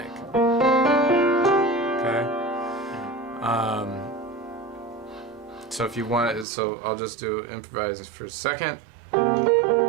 Okay. So if you want, so I'll just do improvise for a second.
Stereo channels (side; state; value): left; drops out; at 6.5 s